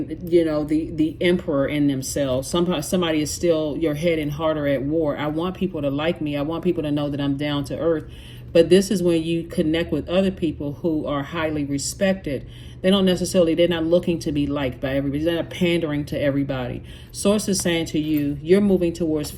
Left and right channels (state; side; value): identical; both; correlation 1.00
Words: emperor in themselves. Somebody is still, your head and heart are at war. I want people to like me. I want people to know that I'm down to earth. But this is when you connect with other people who are highly respected. They're not looking to be liked by everybody. They're not pandering to everybody. Source is saying to you, you're moving towards